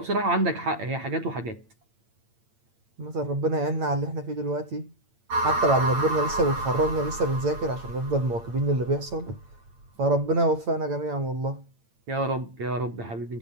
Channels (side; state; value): left; late; 8.8 ms